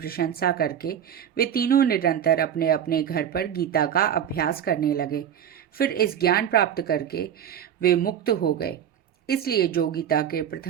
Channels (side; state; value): left; quieter; 9.3 dB